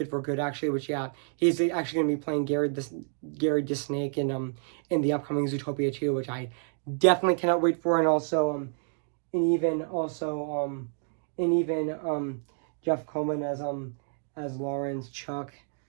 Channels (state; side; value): silent; left; 59 dB below the other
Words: for Good, actually. Which yeah, he's actually going to be playing Gary Disnake in the upcoming Zootopia 2, which I definitely cannot wait for. And also and even Jeff Coleman as Lawrence, Chuck